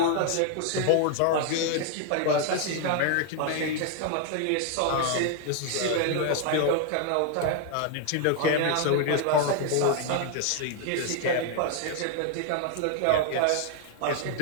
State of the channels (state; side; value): different; both; correlation 0.00